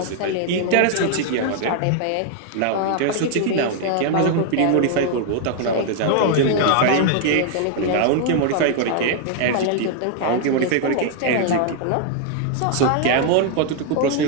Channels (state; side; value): different; both; correlation 0.00